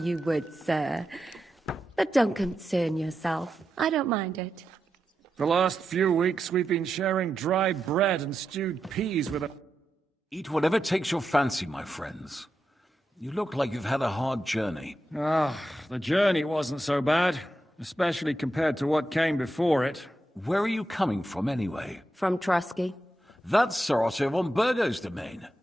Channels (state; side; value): normal; both; correlation 0.87